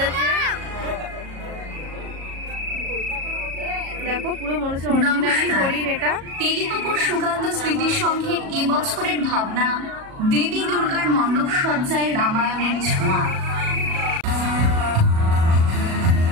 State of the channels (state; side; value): late; left; 37 ms